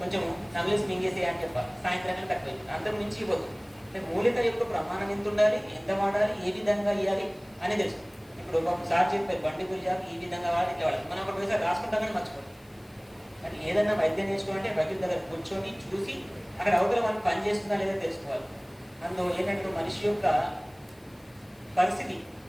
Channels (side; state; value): left; noise; hiss, 30 dB below the sound